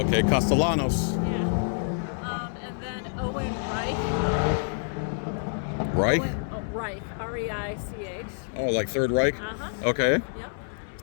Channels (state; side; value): silent; right; 60 dB below the other